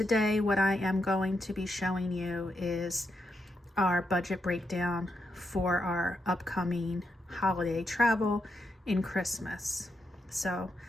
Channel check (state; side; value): normal; both; correlation 0.83